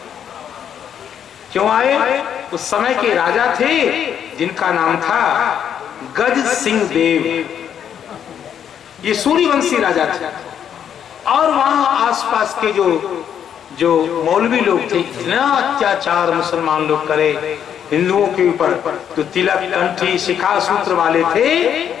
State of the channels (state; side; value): quieter; right; 8.9 dB